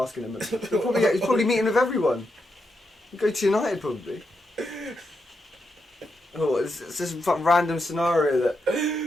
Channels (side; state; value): both; normal; correlation 0.83